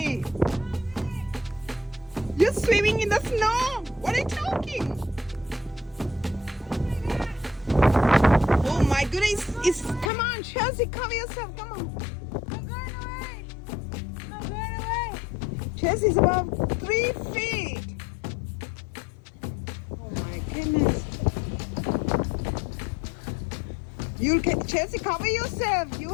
You're swimming in the snow. What are you talking? Oh my goodness, come on, Chelsea, cover yourself, come on. I'm going away. I'm going away. Chelsea's about 3 feet. Oh my goodness. Chelsea, cover yourself. You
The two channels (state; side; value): drops out; right; at 10.1 s